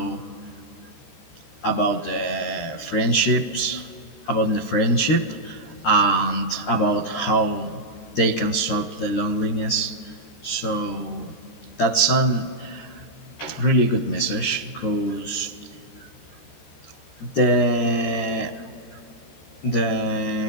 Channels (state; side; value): late; right; 13 ms